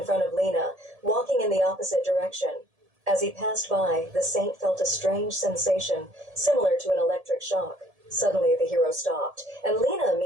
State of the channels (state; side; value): late; left; 1.7 ms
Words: front of Lena, walking in the opposite direction. As he passed by, the saint felt a strange sensation, similar to an electric shock. Suddenly, the hero stopped, and Lena,